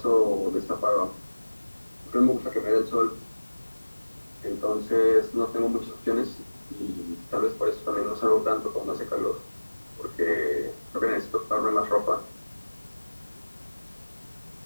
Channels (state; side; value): inverted; both; correlation -1.00